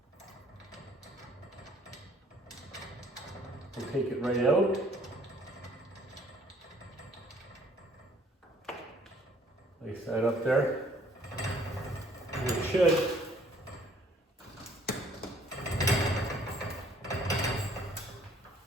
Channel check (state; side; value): normal; both; correlation 0.60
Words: We'll take it right out. Place that up there. And it should.